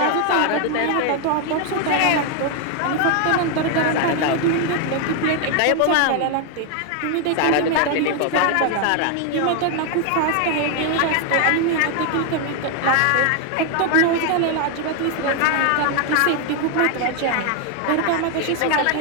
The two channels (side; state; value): both; different; correlation 0.01